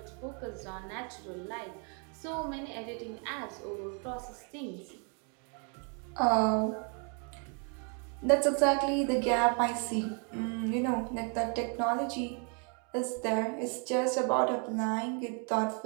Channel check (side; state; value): left; quieter; 38.9 dB